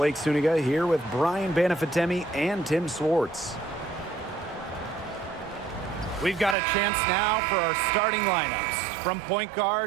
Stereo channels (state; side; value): drops out; left; at 6.6 s